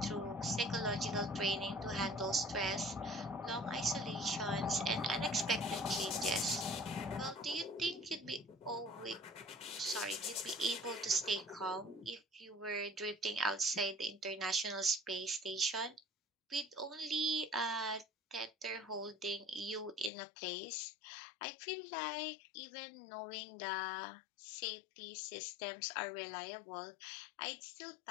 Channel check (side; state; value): right; drops out; at 20.1 s